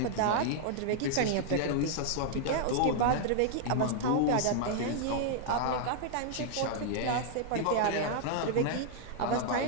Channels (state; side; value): different; both; correlation -0.01